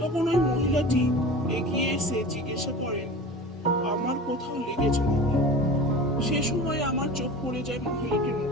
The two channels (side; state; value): both; normal; correlation 0.35